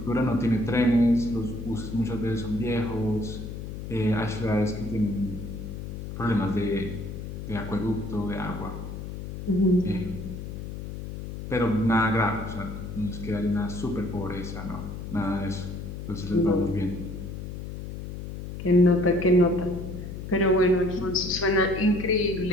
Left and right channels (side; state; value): left; noise; hum, 8 dB below the sound